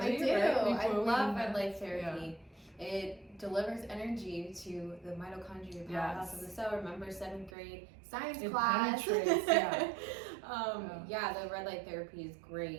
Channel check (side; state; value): left; drops out; at 7.5 s